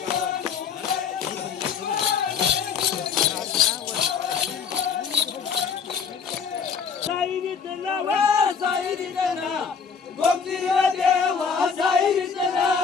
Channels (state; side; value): quieter; right; 6.2 dB